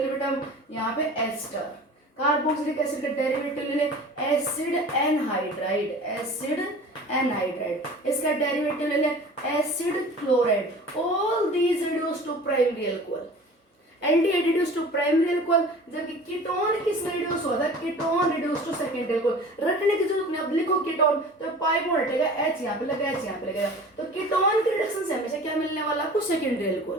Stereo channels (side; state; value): both; normal; correlation 0.41